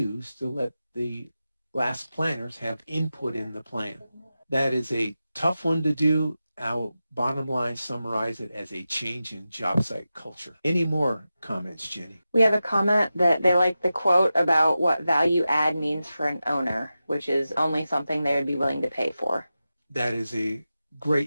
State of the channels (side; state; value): both; inverted; correlation -0.93